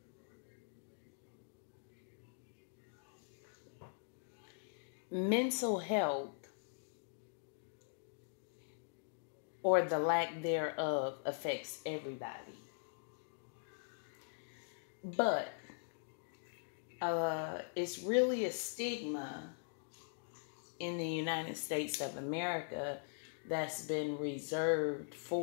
Mental health, or the lack thereof, affects everybody. But it's really a stigma in the United States of America that's been reserved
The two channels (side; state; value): right; silent; digital silence